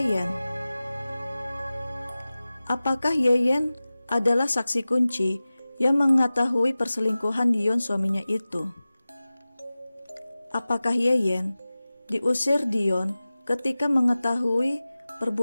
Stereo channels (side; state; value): both; inverted; correlation -0.97